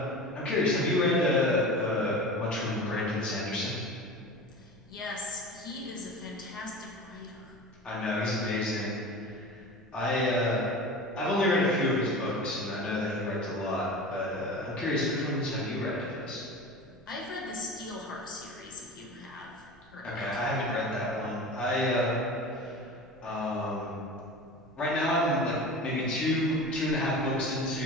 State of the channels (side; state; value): both; normal; correlation 0.33